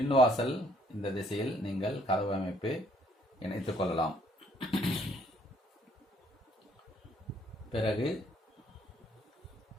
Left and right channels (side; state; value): both; normal; correlation 0.65